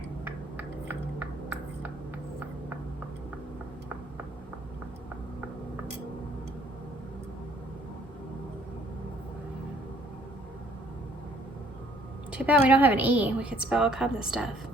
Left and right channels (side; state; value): both; normal; correlation 0.61